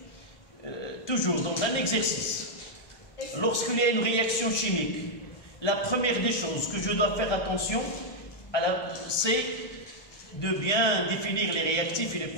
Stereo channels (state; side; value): late; right; 1.3 ms